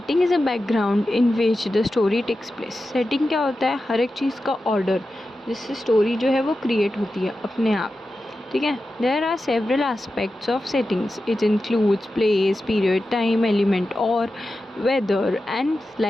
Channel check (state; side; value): normal; both; correlation 0.92